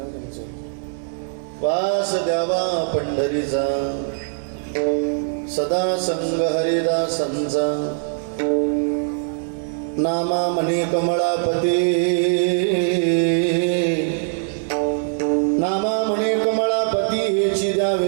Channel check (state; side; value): silent; left; 64 dB below the other